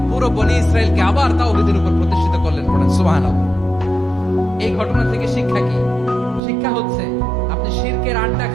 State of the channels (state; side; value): drops out; left; at 6.4 s